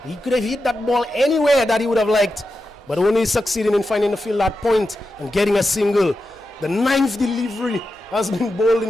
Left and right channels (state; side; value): normal; both; correlation 0.90